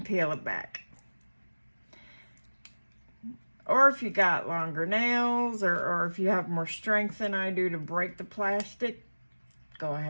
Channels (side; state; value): both; inverted; correlation -1.00